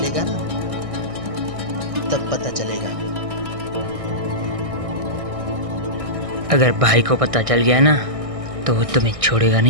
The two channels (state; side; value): late; left; 1.6 ms